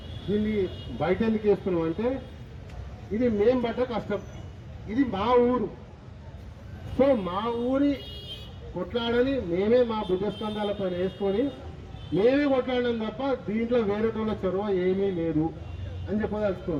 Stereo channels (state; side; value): identical; both; correlation 1.00